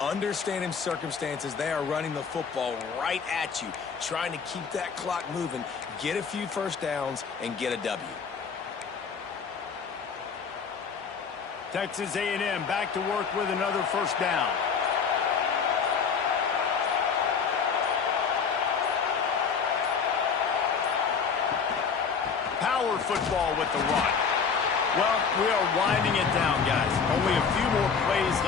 understanding circumstances. They are running the football right at you, trying to keep that clock moving, get a few first downs, and get a W. Texas A&M back to work with another first down. Power football with the run. Well, we are winding it down, guys. Only a few more plays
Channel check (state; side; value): quieter; right; 6.0 dB